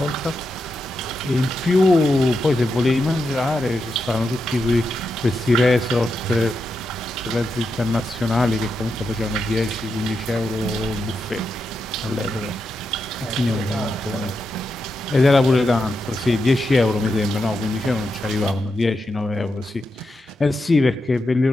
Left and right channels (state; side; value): normal; both; correlation 0.86